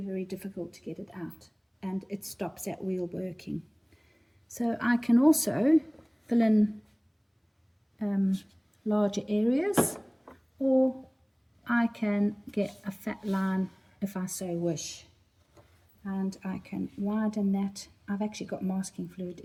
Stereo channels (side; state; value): both; identical; correlation 1.00